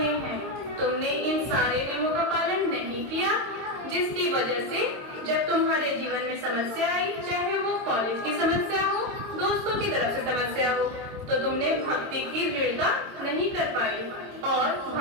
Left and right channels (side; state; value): left; late; 22 ms